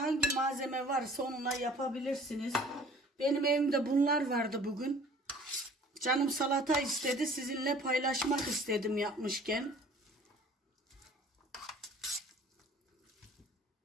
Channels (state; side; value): normal; both; correlation 0.50